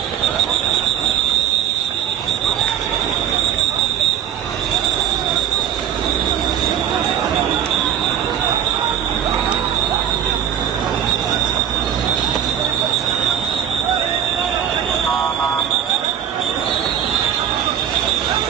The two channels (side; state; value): left; quieter; 9.6 dB